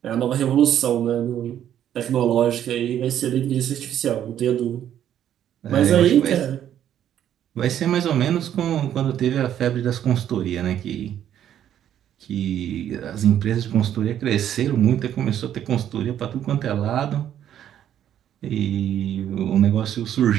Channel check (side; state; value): left; quieter; 10.5 dB